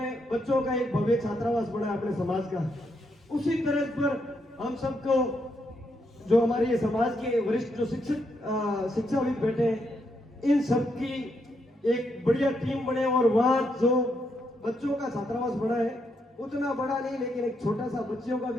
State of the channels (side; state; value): both; normal; correlation 0.79